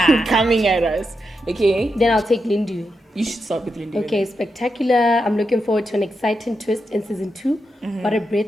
coming at us. Okay. Then I'll take Lindu. You should start with Lindu. Okay, spectacular. I'm looking forward to an exciting twist in season 2. What a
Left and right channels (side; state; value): both; normal; correlation 0.86